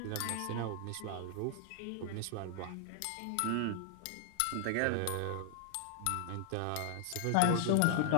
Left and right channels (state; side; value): different; both; correlation 0.00